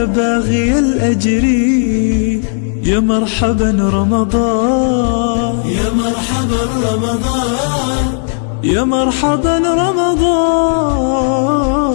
باغي الأجر. يا مرحبا رمضان، يا مرحبا رمضان، يا مرحبا رمضان.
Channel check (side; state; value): right; silent; digital silence